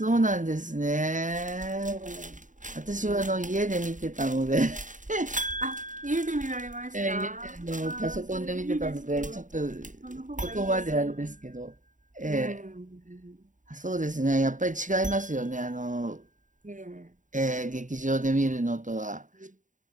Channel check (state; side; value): late; left; 0.37 ms